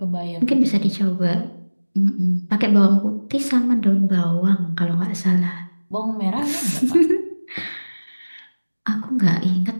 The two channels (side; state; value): both; inverted; correlation -1.00